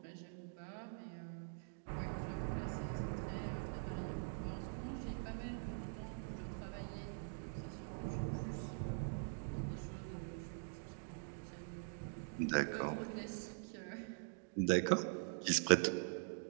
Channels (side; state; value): left; silent; digital silence